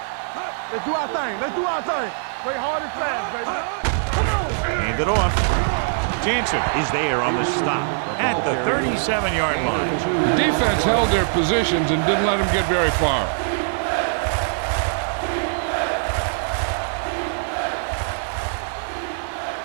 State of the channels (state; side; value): silent; left; 62 dB below the other